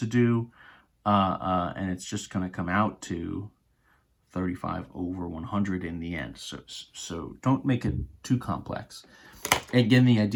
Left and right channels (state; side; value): identical; both; correlation 1.00